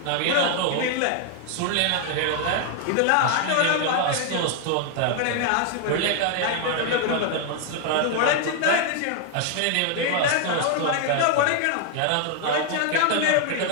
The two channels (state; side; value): different; both; correlation 0.00